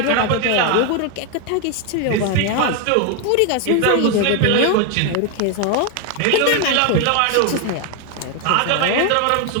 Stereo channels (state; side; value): different; both; correlation 0.01